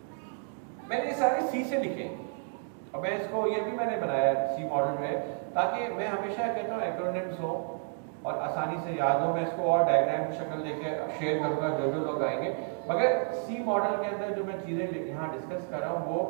मैंने ये सारे सी से लिखे, और मैं इसको ये भी मैंने बनाया सी मॉडल में, ताकि मैं हमेशा कहता हूँ एक्रोनिम्स हो और आसानी से याद हो। मैं इसको और डायग्राम की शक्ल लेके शेयर करूंगा जो लोग आएंगे, मगर सी मॉडल के अंदर जो मैं चीज़ें यहाँ डिस्कस कर रहा हूँ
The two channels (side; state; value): left; silent; 57 dB below the other